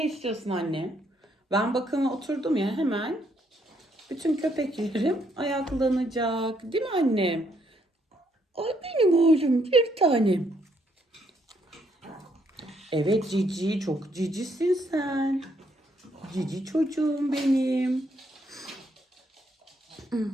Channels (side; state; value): both; normal; correlation 0.72